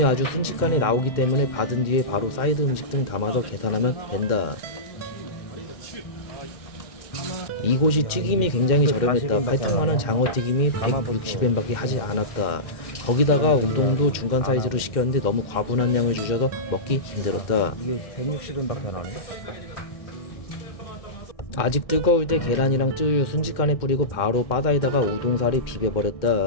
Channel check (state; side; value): late; right; 1.6 ms